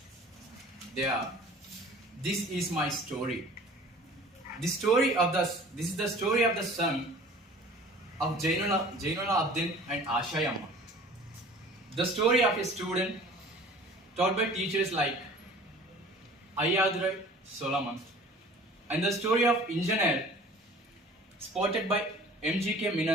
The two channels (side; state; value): both; normal; correlation 0.46